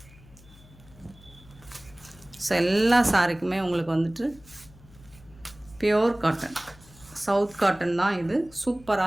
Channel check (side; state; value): left; noise; hum, 24 dB below the sound